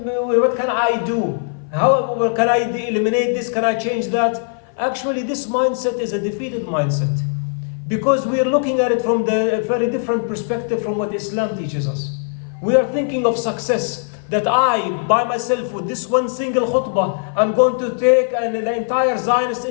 I do? How can I eliminate this? Can I change that? Actually, this mindset is a defeated mindset, because we are looking at it from a very different perspective from what Islam teaches us. We are thinking of success, that I, by myself, with this one single khutbah, I'm going to take the entire Zionist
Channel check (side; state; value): right; silent; 56 dB below the other